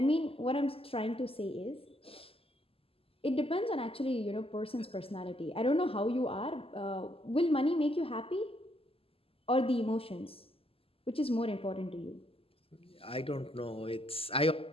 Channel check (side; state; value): right; late; 0.27 ms